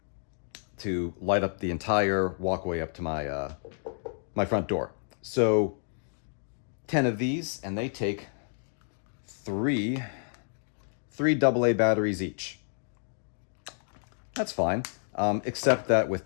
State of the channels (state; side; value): silent; right; digital silence